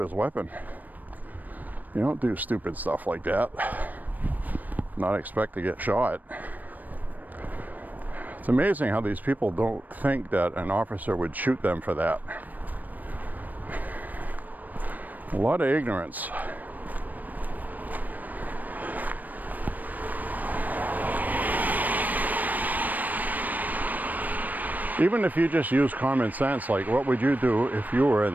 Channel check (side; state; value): left; late; 0.083 ms